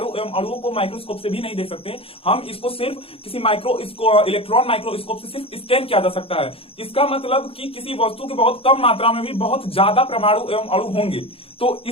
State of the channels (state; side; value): late; right; 0.27 ms